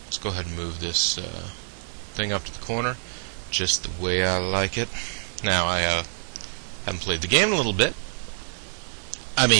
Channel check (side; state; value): left; silent; 61 dB below the other